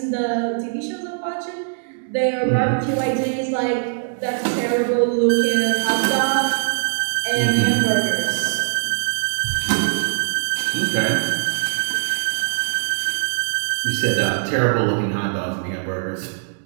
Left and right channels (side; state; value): left; silent; 65 dB below the other